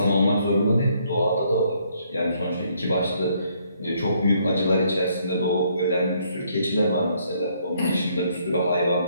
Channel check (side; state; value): both; inverted; correlation -0.69